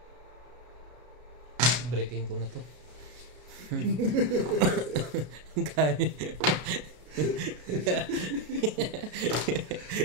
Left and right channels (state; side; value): late; left; 32 ms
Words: Breaking ko na to. Kaya.